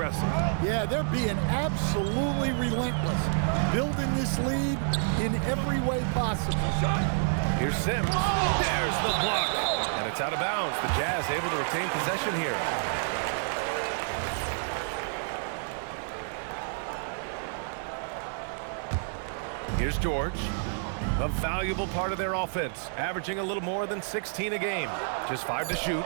Yeah, they're being absolutely relentless, building this lead in every way possible. Here's Sims. There's the block. And it's out of bounds. The Jazz able to retain possession here. Here's George. A valuable part of their offense, averaging a little more than 16 a game. Just 5 to shoot.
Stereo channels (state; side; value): silent; left; digital silence